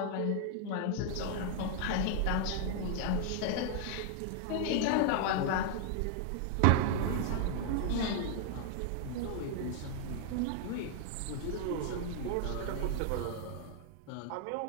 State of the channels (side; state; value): both; different; correlation 0.00